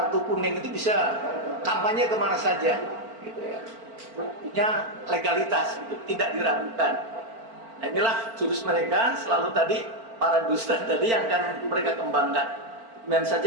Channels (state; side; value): late; left; 4.4 ms